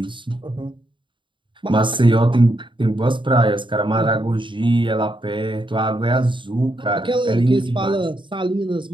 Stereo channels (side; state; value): left; late; 0.24 ms